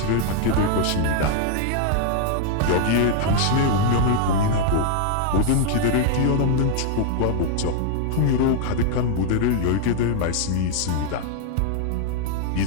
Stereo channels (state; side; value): different; both; correlation 0.00